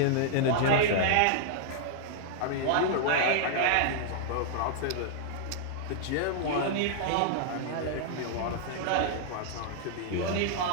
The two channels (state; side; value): different; both; correlation -0.01